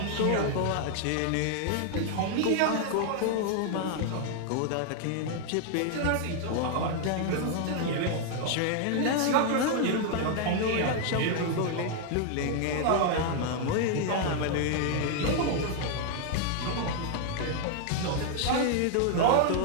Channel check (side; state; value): both; different; correlation 0.00